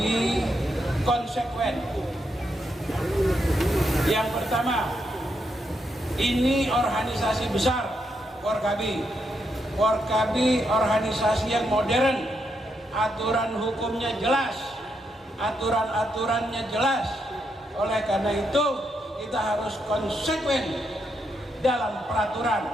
konsekuen. Yang pertama, ini organisasi besar Forkabi. Forkabi organisasi yang modern, aturan hukumnya jelas, aturan-aturannya jelas. Oleh karena itu kita harus konsekuen dalam peraturan.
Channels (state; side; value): normal; both; correlation 0.81